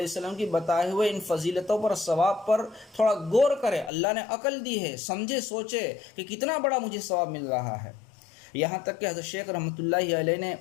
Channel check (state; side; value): drops out; right; at 3.9 s